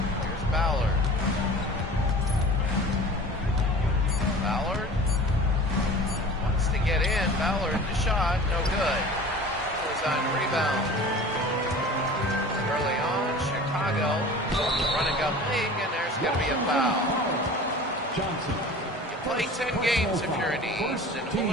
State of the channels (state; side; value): normal; both; correlation 0.40